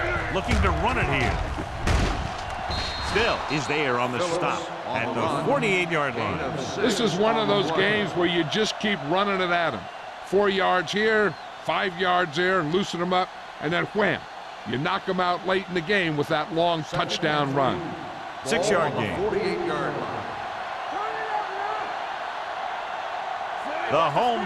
Looking to run it here. Still is there on the stop at the 48-yard line. This is one of those games where you just keep running it at him. 4 yards here, 5 yards there, and loosen them up, and then wham. You knock them out late in the game with that long touchdown run. 6-yard gain. 48-yard line. The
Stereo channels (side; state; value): both; identical; correlation 1.00